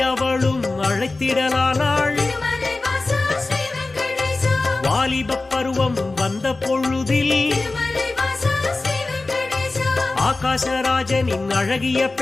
அவளும் அழைத்திடலானாள் திருமலை வாசா ஸ்ரீ வெங்கடேசா வாலிபப் பருவம் வந்த பொழுதில் திருமலை வாசா ஸ்ரீ வெங்கடேசா ஆகாசராஜனின் அழகிய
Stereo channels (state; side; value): quieter; right; 3.3 dB